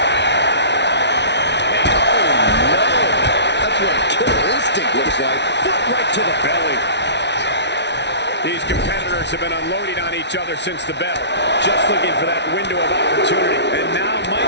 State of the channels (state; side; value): late; right; 0.50 ms